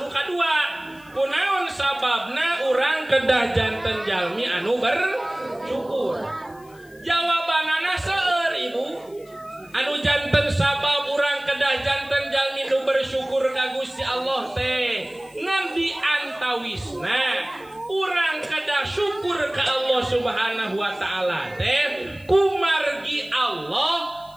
Nu kadua, kunaon sababna urang kedah janten jalmi anu bersyukur. Jawabanana seueur Ibu. Anu janten sabab urang kedah janten jalmi nu bersyukur ka Gusti Allah teh ngan diantawisna urang kedah syukur ka Allah Subhanahu wa taala teh kumargi Allah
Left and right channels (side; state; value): left; noise; hiss, 27 dB below the sound